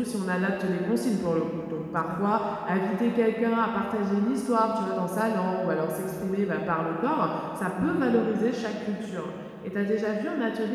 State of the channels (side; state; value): both; identical; correlation 1.00